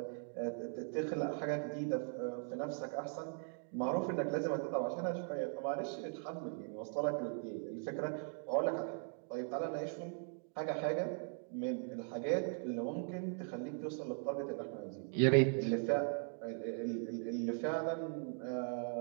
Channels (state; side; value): silent; left; 51 dB below the other